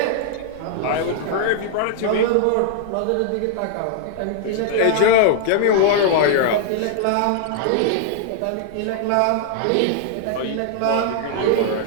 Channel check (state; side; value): different; both; correlation -0.01